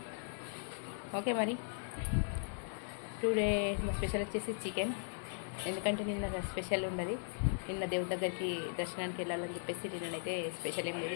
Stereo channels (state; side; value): silent; right; digital silence